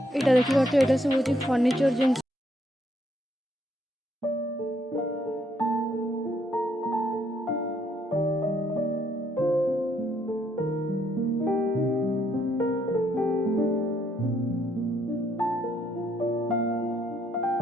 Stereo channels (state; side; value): normal; both; correlation 0.71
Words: এটা দেখি পাচ্ছ এটা সব হচ্ছে ফর্নিচর জিনিস